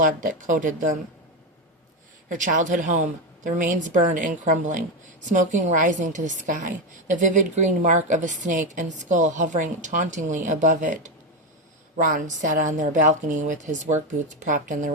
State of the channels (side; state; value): both; normal; correlation 0.11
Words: that coated them. Her childhood home, the remains burned and crumbling, smoking rising to the sky, the vivid green mark of a snake and skull hovering tauntingly above it. Ron sat on their balcony with his work boots propped on the